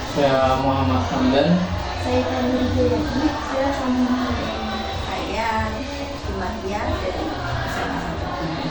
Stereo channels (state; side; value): identical; both; correlation 1.00